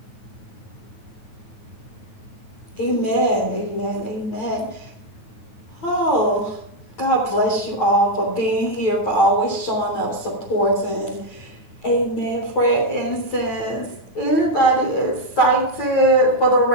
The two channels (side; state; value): right; late; 9.3 ms